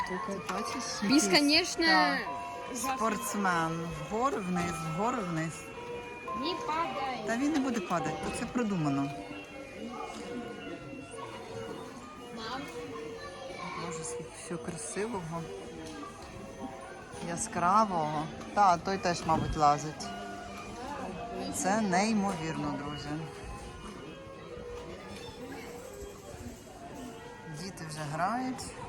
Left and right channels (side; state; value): both; identical; correlation 1.00